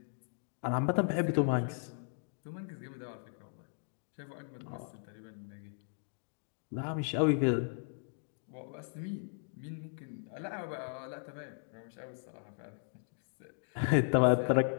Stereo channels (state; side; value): silent; right; digital silence